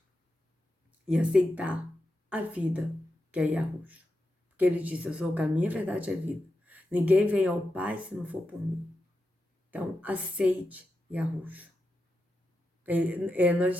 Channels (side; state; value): both; normal; correlation 0.88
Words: E aceitar a vida que é Yahushua. Porque ele disse, eu sou o caminho, a verdade e a vida. Ninguém vem ao Pai se não for por mim. Então, aceite Yahushua. Nós